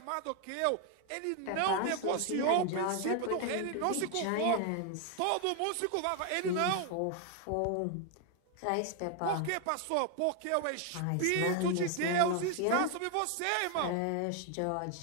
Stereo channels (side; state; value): both; different; correlation 0.01